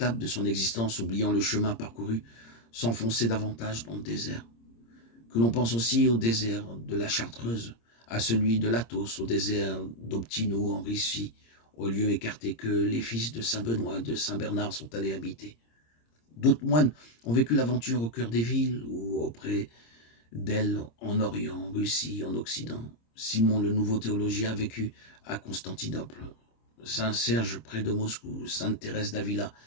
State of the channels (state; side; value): late; right; 26 ms